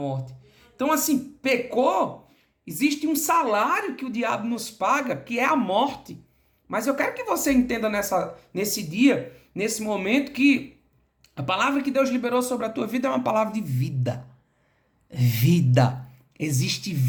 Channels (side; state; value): both; identical; correlation 1.00